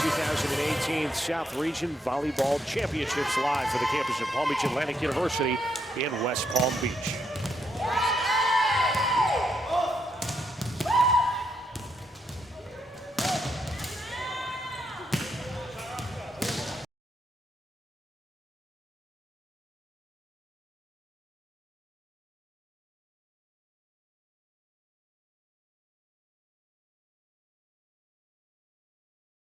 2018 South Region Volleyball Championships live for the campus of Palm Beach Atlantic University in West Palm Beach.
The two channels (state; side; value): normal; both; correlation 0.78